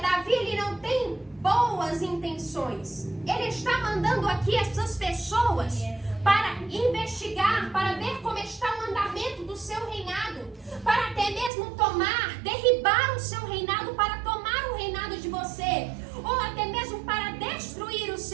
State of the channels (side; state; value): left; drops out; at 11.5 s